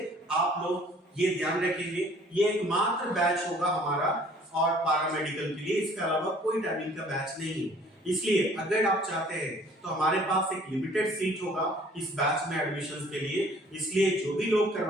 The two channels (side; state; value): both; normal; correlation 0.55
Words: आप लोग ये ध्यान रखेंगे, ये एकमात्र बैच होगा हमारा और पारामेडिकल के लिए, इसके अलावा कोई टाइमिंग का बैच नहीं है। इसलिए अगर आप चाहते हैं तो हमारे पास एक लिमिटेड सीट होगा इस बैच में एडमिशन के लिए, इसलिए जो भी लोग